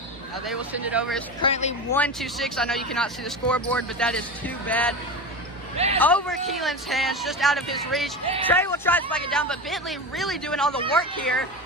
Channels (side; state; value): both; normal; correlation 0.25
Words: Now they will send it over. It's currently 1-6. I know you cannot see the scoreboard, but that is too bad. Over Keelan's hands, just out of his reach. Trey will try to spike it down, but Bentley really doing all the work here.